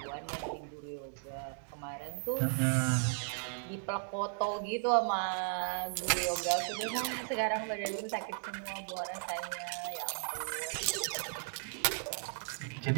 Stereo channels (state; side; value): silent; left; digital silence